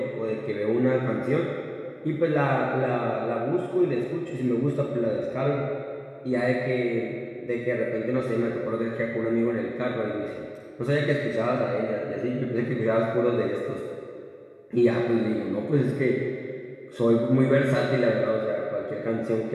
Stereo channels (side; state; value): both; identical; correlation 1.00